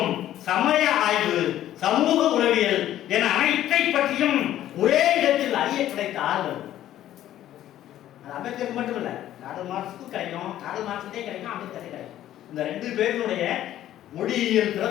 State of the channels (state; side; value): quieter; right; 12.6 dB